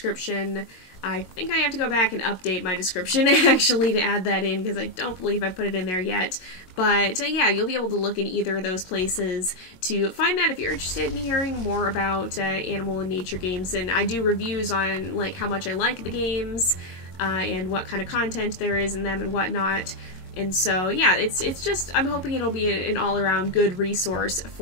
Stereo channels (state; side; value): late; right; 22 ms